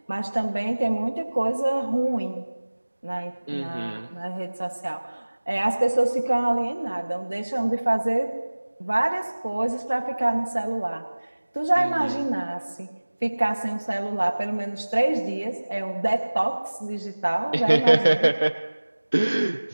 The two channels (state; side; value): inverted; both; correlation -1.00